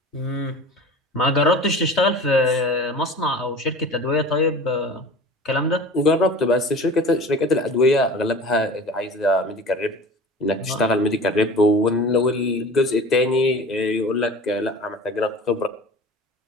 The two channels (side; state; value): both; normal; correlation 0.39